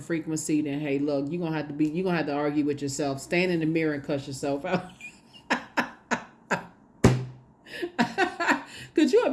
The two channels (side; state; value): both; identical; correlation 1.00